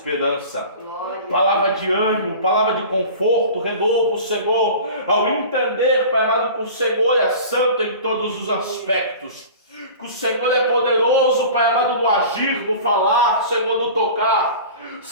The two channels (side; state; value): both; inverted; correlation -0.38